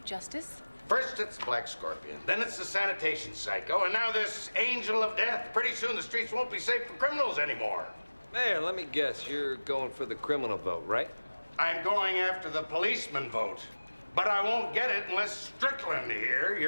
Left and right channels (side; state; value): both; inverted; correlation -1.00